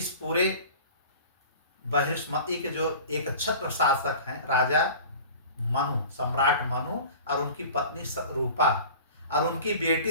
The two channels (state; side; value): inverted; both; correlation -0.40